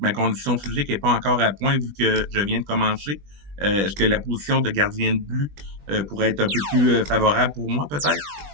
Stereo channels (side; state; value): left; late; 20 ms